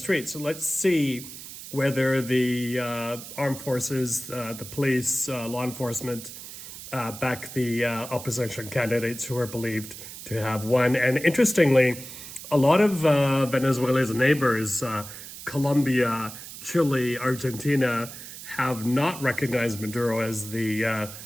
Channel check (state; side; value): noise; right; hiss, 13 dB below the sound